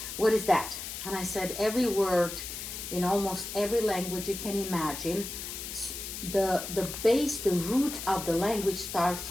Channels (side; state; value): left; noise; hiss, 7 dB below the sound